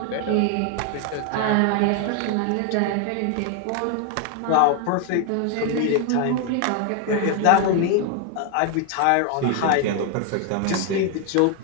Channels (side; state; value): both; different; correlation 0.01